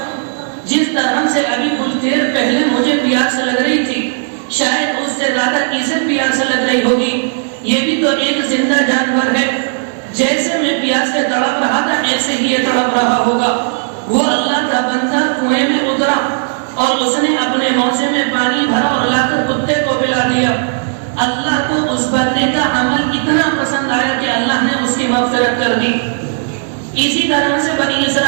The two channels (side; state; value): left; silent; digital silence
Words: جس طرح سے ابھی کچھ دیر پہلے مجھے پیاس لگ رہی تھی، شاید اس سے زیادہ اسے پیاس لگ رہی ہوگی، یہ بھی تو ایک زندہ جانور ہے، جیسے میں پیاس سے تڑپ رہا تھا ایسے ہی یہ تڑپ رہا ہوگا۔ وہ اللہ کا بندہ کنویں میں اترا اور اس نے اپنے موزے میں پانی بھرا اور لا کر کتے کو پلا دیا۔ اللہ کو اس بندے کا عمل اتنا پسند آیا کہ اللہ نے اس کی مغفرت کر دی۔ اسی طرح سے بنی